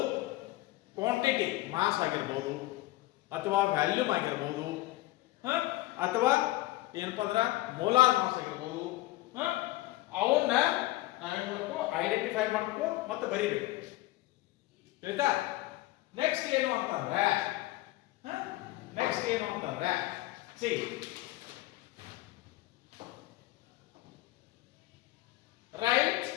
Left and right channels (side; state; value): right; quieter; 18.1 dB